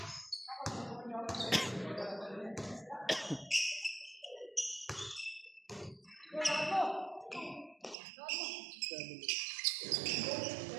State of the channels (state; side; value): drops out; left; at 8.0 s